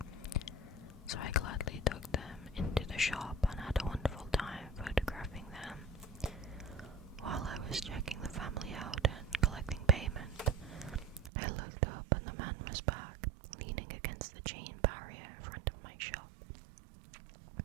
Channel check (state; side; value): drops out; left; at 11.3 s